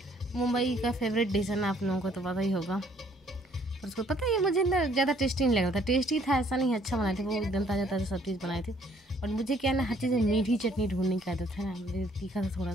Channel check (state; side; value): normal; both; correlation 0.63